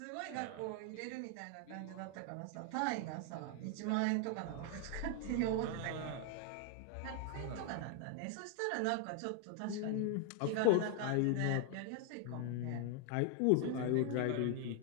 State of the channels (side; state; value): both; different; correlation 0.00